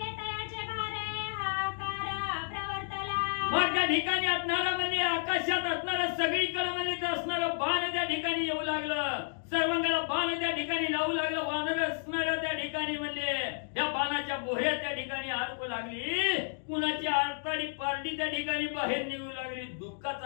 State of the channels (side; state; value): right; silent; digital silence